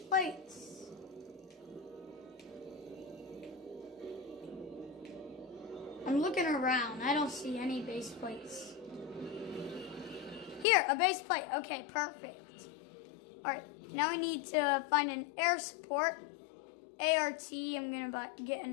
I'm looking around. I don't see any base plates. Here, a base plate. Okay, perfect. Alright, now we need to find an air support. ART. I'm going to get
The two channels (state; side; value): drops out; right; at 10.7 s